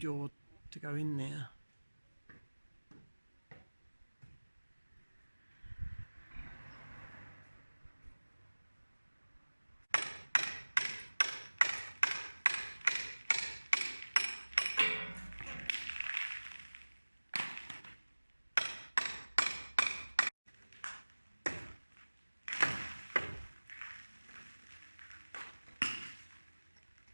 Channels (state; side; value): inverted; both; correlation -1.00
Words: to go in there.